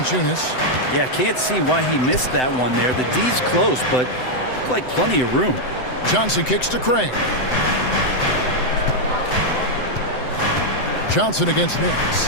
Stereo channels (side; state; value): right; late; 7.9 ms